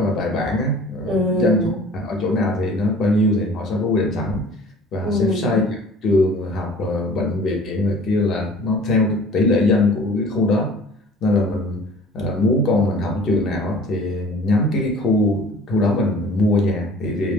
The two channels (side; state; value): both; normal; correlation 0.47